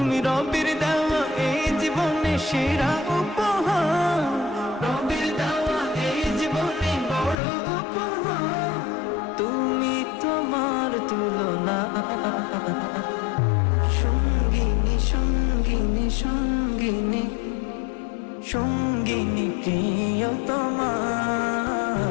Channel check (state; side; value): drops out; right; at 7.4 s